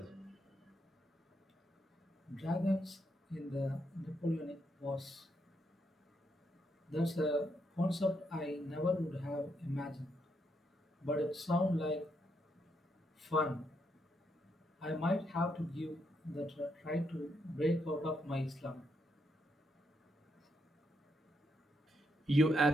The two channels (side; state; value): both; normal; correlation 0.79